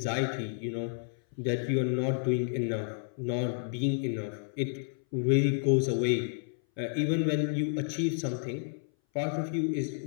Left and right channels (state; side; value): silent; right; 57 dB below the other